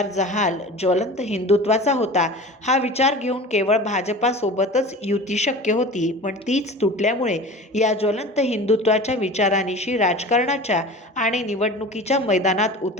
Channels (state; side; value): normal; both; correlation 0.37